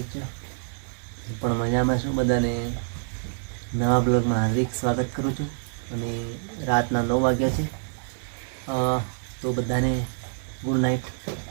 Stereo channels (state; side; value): silent; left; digital silence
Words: જ, પણ મજામાં છું. બધાને નવા બ્લોગમાં હાર્દિક સ્વાગત કરું છું. અને રાતના 9 વાગ્યા છે, તો બધાને ગુડ નાઇટ.